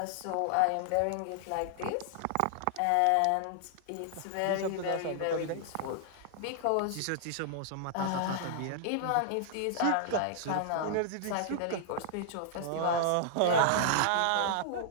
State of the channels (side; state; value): both; different; correlation -0.01